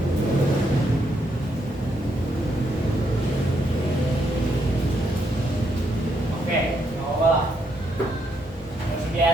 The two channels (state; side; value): normal; both; correlation 0.76